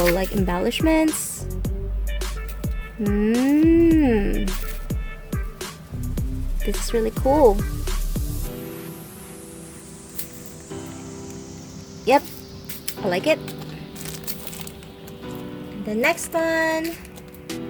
like embellishments. This is really cool. Yep, I like it. And the next one.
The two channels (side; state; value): both; identical; correlation 1.00